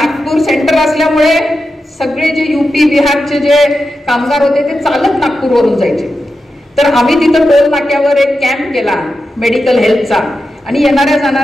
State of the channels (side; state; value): both; normal; correlation 0.90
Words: सेंटर असल्यामुळे सगळे जे UP बिहारचे जे कामगार होते ते चालत नागपूरवरून जायचे. तर आम्ही तिथं टोल नाक्यावर एक कॅम्प केला मेडिकल हेल्थचा आणि येणाऱ्या